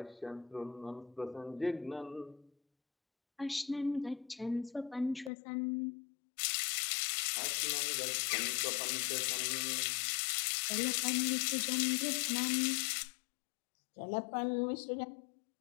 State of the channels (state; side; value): drops out; right; at 5.3 s